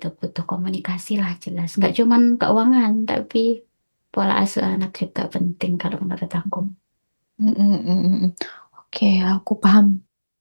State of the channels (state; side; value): inverted; both; correlation -1.00